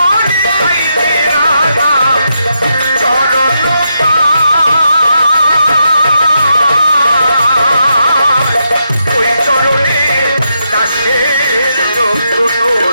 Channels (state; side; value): inverted; both; correlation -0.82